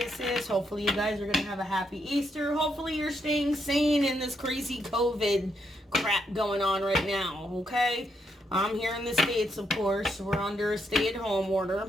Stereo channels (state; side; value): normal; both; correlation 0.78